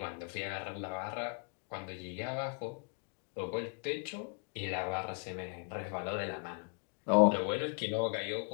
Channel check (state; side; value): quieter; right; 39.3 dB